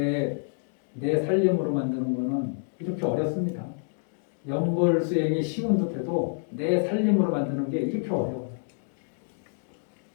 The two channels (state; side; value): silent; right; digital silence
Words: 살림으로 만드는 거는 이렇게 어렵습니다. 연불 수행이 쉬운 듯해도 내 살림으로 만드는 게 이렇게 어려워요.